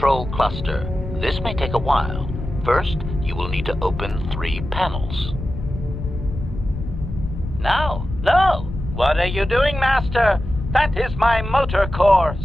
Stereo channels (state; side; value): noise; left; rumble, 8 dB below the sound